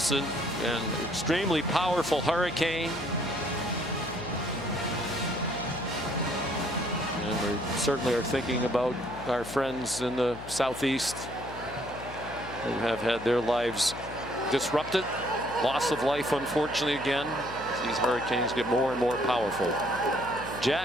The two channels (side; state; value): left; noise; hum, 13 dB below the sound